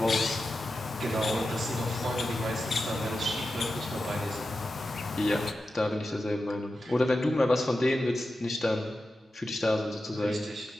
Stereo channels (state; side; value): normal; both; correlation 0.91